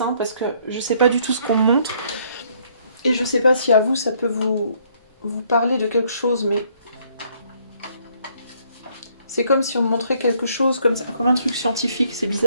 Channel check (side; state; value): both; inverted; correlation -0.66